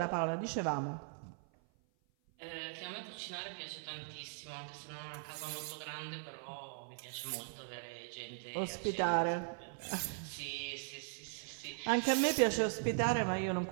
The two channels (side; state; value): left; silent; 52 dB below the other